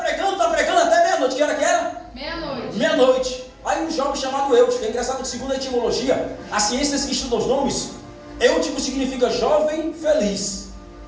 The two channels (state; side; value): identical; both; correlation 1.00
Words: até meia-noite. Que hora que era? Meia-noite. Meia-noite. Aí um jovem chamado Eutico, é engraçado que segundo a etimologia, as ciências que estudam os nomes, Eutico significa jovem feliz.